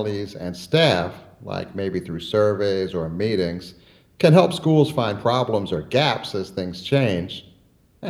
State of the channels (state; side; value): identical; both; correlation 1.00